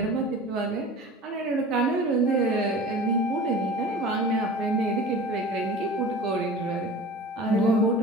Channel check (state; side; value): normal; both; correlation 0.39